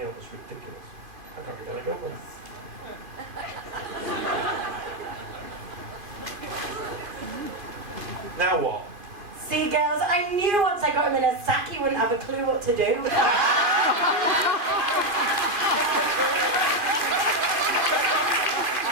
up, it's ridiculous. I can't be going to go with it. Now what? See, girls, I knew once I got him in a sack he wouldn't have a clue what to do.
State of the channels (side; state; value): left; late; 2.4 ms